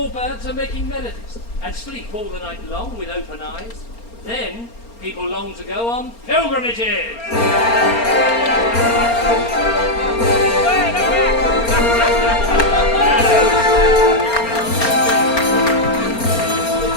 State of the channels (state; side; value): late; right; 4.3 ms